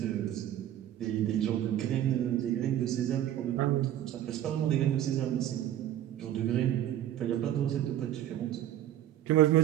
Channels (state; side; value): quieter; left; 11.9 dB